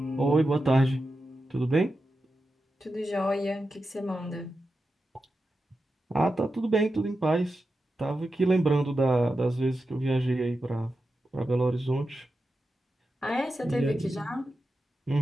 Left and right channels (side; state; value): both; normal; correlation 0.90